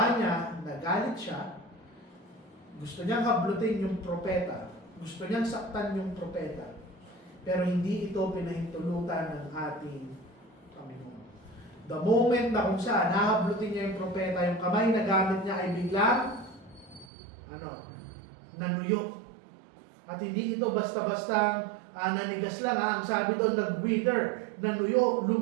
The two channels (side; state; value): left; drops out; at 17.1 s